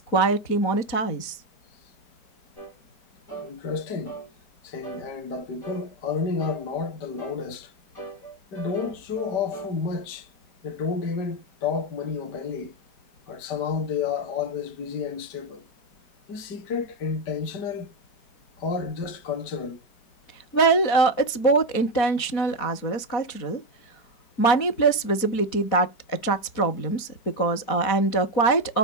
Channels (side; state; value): right; late; 4.2 ms